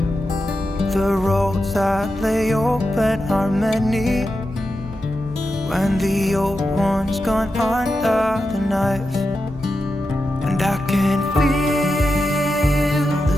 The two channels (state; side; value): normal; both; correlation 0.89